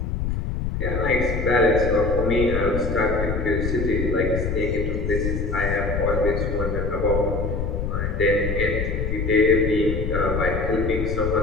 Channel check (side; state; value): left; noise; rumble, 2 dB below the sound